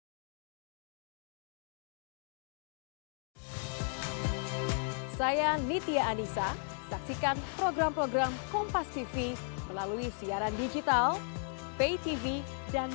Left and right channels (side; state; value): right; silent; 54 dB below the other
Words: Saya Nitya Anissa, saksikan program-program Kompas TV melalui siaran digital, pay TV, dan